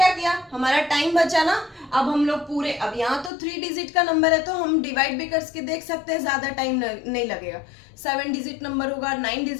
किया, हमारा टाइम बचा ना। अब हम लोग पूरे, अब यहाँ तो 3 डिजिट का नंबर है तो हम डिवाइड भी करके देख सकते हैं, ज्यादा टाइम नहीं लगेगा। 7 डिजिट नंबर होगा, 9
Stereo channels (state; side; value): drops out; right; at 3.3 s